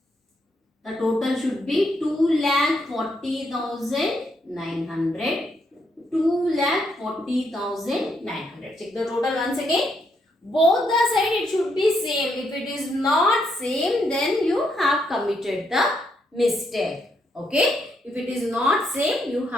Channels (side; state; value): both; normal; correlation 0.77